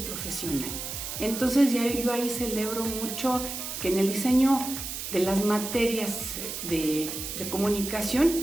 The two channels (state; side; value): noise; right; hiss, 6 dB below the sound